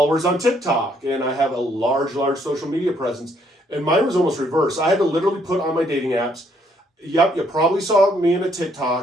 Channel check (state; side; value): normal; both; correlation 0.69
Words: on TikTok. And I have a large, large social media presence. And mine was almost reverse. I had to literally put on my dating apps, yep, you probably saw me in a